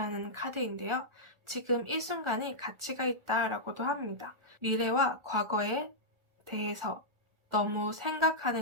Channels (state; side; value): late; left; 1.4 ms